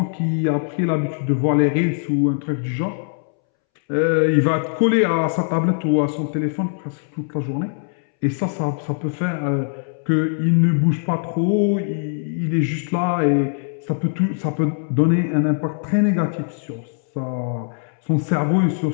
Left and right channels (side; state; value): right; silent; 65 dB below the other